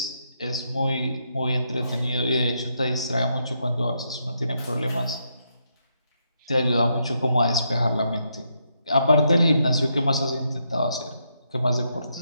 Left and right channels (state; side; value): inverted; both; correlation -0.79